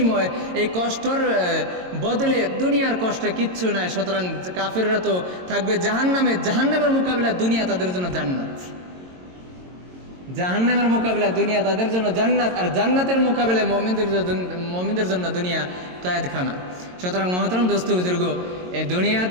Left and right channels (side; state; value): left; late; 22 ms